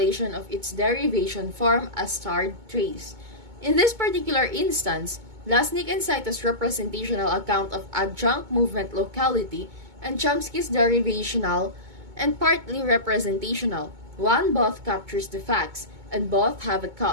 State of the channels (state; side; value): late; left; 2.2 ms